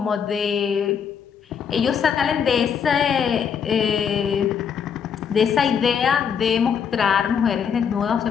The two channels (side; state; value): right; quieter; 7.2 dB